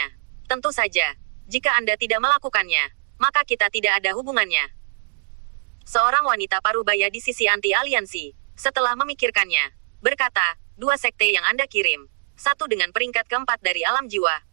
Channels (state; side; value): silent; left; digital silence